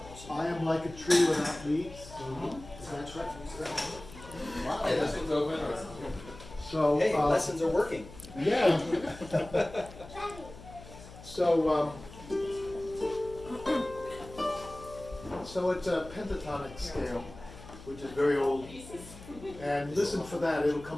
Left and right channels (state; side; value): noise; left; hum, 17 dB below the sound